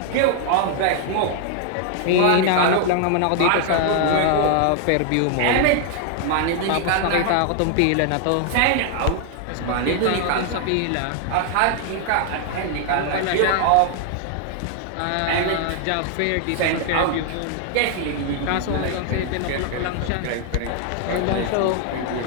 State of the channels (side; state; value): both; different; correlation 0.00